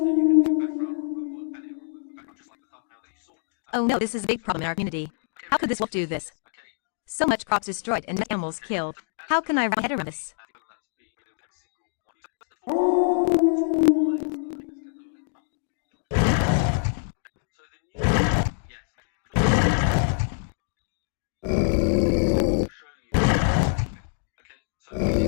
then you can do background removal and it will remove the background just like the thumbnail that you saw. Oh no, this is a big problem in our community. How could this wolf do this? Okay. So much crops destroyed and animals killed. How can I wrap my head around this? So the new yes. I'll show you. Okay. So this is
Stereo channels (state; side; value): silent; right; digital silence